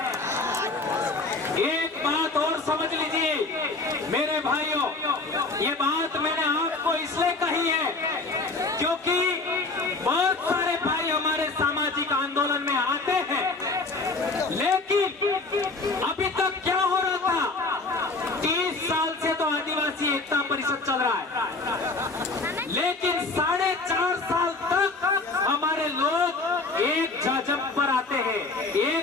बात मैंने आपको इसलिए कही है क्योंकि बहुत सारे भाई हमारे सामाजिक आंदोलन में आते हैं, लेकिन अभी तक क्या हो रहा था, 30 साल से तो आदिवासी एकता परिषद चल रहा है, लेकिन 4.5 साल तक हमारे लोग एक जाजम पर आते हैं,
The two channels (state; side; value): quieter; right; 3.6 dB